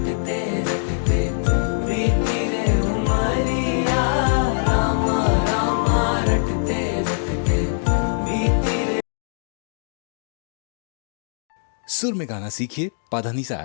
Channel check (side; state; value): right; silent; digital silence